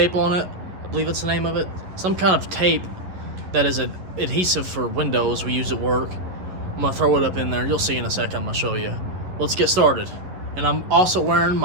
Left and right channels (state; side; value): late; left; 11 ms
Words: on it. I believe it's the name of it. Some kind of tape that is an adhesive for windows we use at work. I'm gonna throw it up in there. You'll see in a second. I'm gonna show you. Let's get started. And I'm also wearing